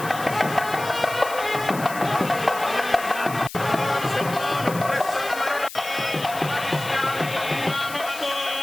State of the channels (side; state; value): left; noise; hiss, 13 dB below the sound